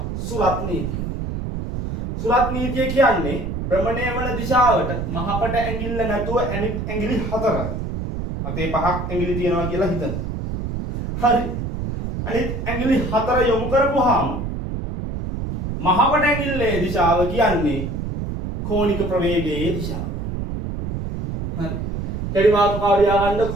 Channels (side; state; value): right; noise; rumble, 4 dB below the sound